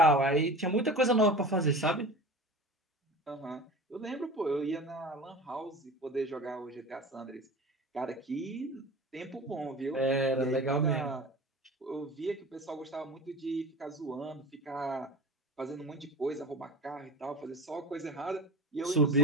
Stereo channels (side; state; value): both; normal; correlation 0.35